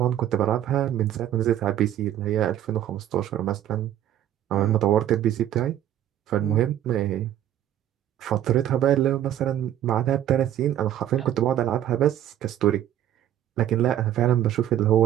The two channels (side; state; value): left; quieter; 11.6 dB